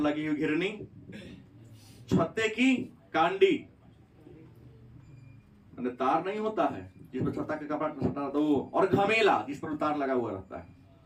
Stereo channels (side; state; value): both; identical; correlation 1.00